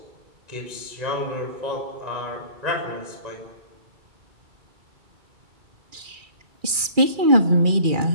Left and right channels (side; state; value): left; late; 2.4 ms